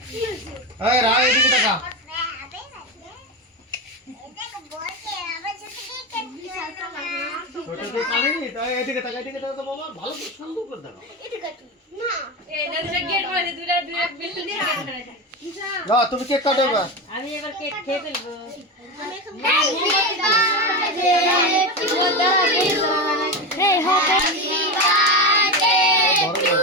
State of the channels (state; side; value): normal; both; correlation 0.19